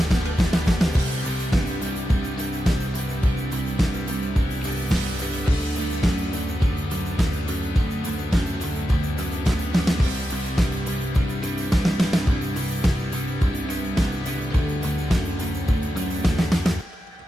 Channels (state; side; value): normal; both; correlation 0.88